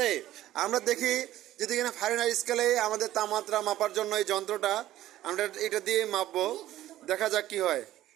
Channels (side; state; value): left; quieter; 14.1 dB